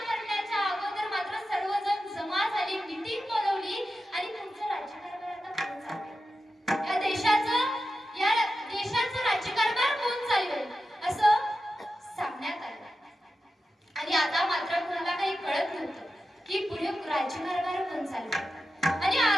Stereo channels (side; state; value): both; normal; correlation 0.91